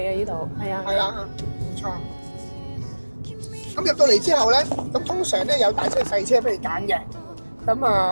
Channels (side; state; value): both; inverted; correlation -1.00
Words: 啊！呢度係啊。係啦，冇錯。咁入到嚟之後咧，咁通常咧有大車細車俾你揀嘅。咁